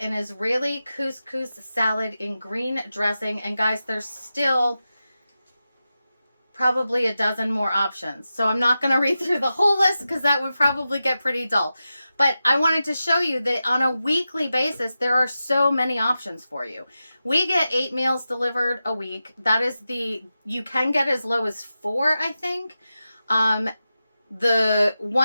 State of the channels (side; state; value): both; inverted; correlation -0.92